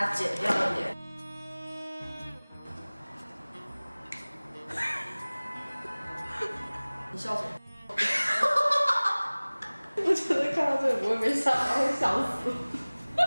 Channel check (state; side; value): inverted; both; correlation -1.00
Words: 剪掉一点。你笑什么？我觉得看到这个不会被吓到，会笑死。